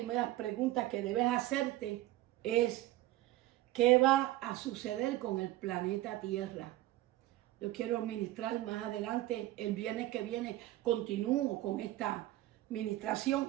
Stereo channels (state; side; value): quieter; left; 16.0 dB